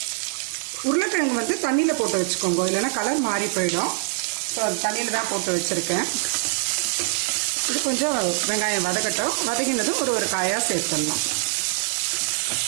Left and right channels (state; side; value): silent; left; 63 dB below the other